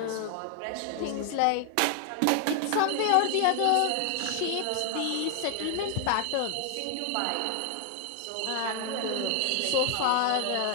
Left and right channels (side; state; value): both; different; correlation 0.00